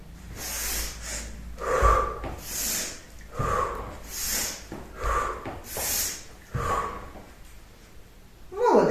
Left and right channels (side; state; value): both; identical; correlation 1.00